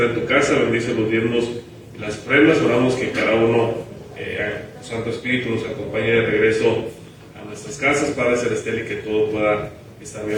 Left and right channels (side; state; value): both; identical; correlation 1.00